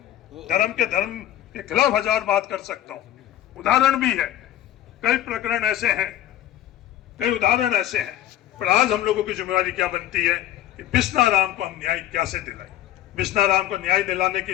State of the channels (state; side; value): quieter; right; 12.9 dB